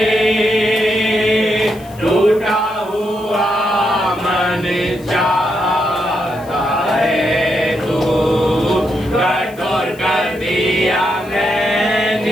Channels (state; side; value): noise; left; hiss, 24 dB below the sound